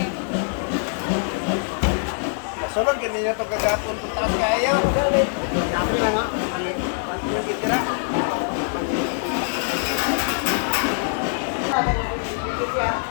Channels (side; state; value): right; silent; digital silence